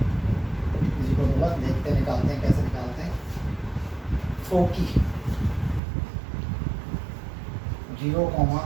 इसी को देखते निकालते हैं कैसे निकालते हैं। फोकी 0,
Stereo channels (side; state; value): left; drops out; at 5.8 s